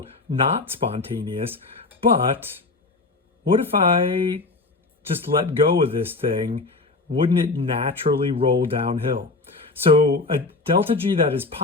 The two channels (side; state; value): right; quieter; 3.6 dB